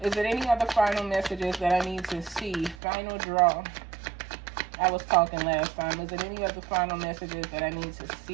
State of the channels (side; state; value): left; drops out; at 2.8 s